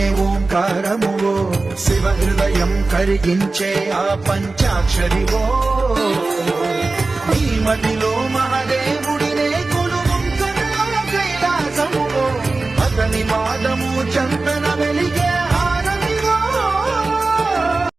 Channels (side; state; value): left; quieter; 3.5 dB